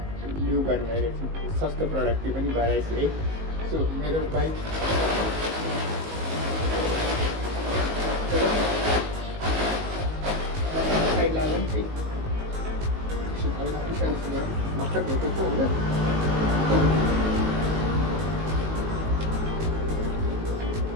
ल्यु गर्न गइरहेको छौँ। सस्तो प्रडक्ट त्यो पनि घर आएछ है। सो मेरो बाइक साइड लागौँ है। हल्का पुसाइस गरौँ भर्खर धोएको छु होइन।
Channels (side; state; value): left; late; 19 ms